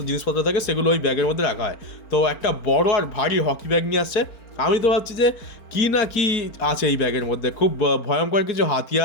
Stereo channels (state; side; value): late; right; 4.4 ms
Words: জিনিসপত্র থাকে সেগুলো ওই ব্যাগের মধ্যে রাখা হয়। তো একটা বড় আর ভারী হকি ব্যাগ নিয়ে আসছে। আমি তো ভাবছি যে কী না কি আছে এই ব্যাগের মধ্যে, খুব ভয়ঙ্কর কিছু